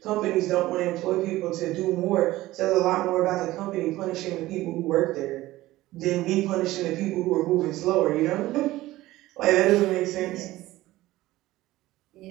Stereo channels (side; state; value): left; quieter; 17.0 dB